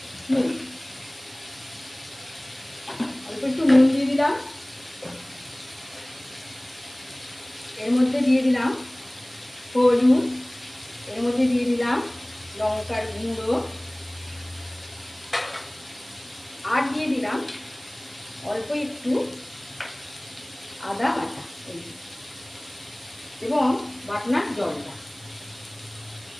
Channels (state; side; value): noise; right; hiss, 21 dB below the sound